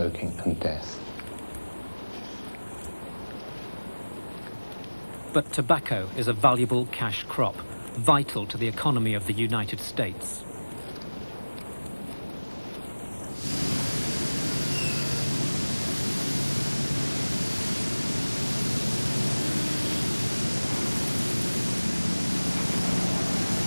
and death. But tobacco is a valuable cash crop, vital to the economy of the United States.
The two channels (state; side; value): inverted; both; correlation -1.00